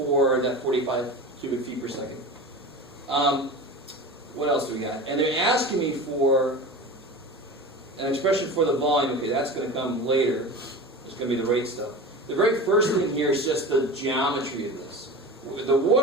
that 45 cubic feet per second. What else do we got? And they're asking me for an expression for the volume. Okay, that's going to come later. It's going to be the rate stuff. The very first thing here is just the geometry of this. The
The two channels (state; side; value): normal; both; correlation 0.31